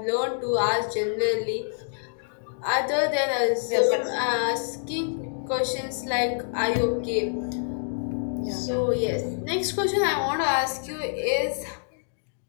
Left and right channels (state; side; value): silent; right; digital silence